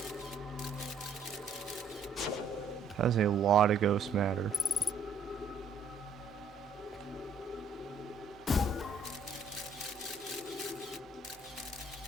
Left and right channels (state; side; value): quieter; left; 4.0 dB